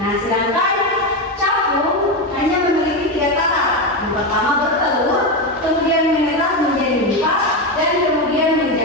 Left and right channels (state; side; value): normal; both; correlation 0.13